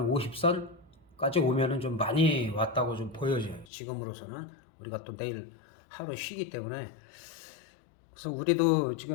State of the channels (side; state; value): right; drops out; at 3.7 s